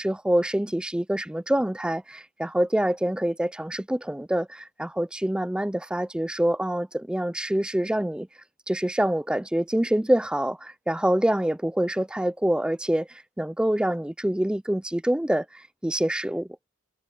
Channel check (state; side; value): normal; both; correlation 0.97